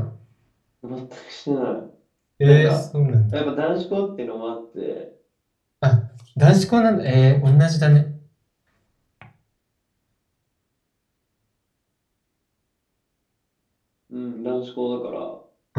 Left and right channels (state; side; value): identical; both; correlation 1.00